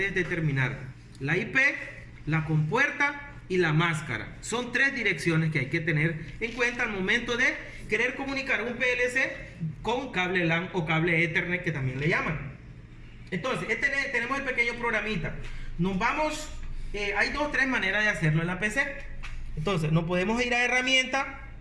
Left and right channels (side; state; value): both; identical; correlation 1.00